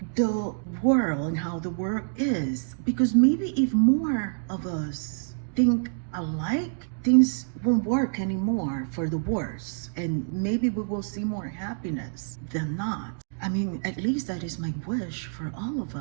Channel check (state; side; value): silent; left; digital silence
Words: the world and how the world is, because maybe if more of us think alike, things won't work anymore for the worse, and maybe we will see more happiness than not. I mean, at least that is my wish for all of